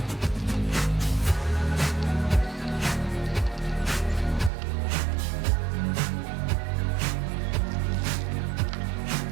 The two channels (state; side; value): drops out; left; at 4.5 s